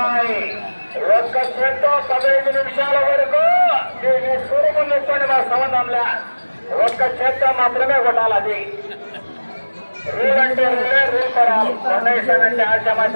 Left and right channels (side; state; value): both; inverted; correlation -1.00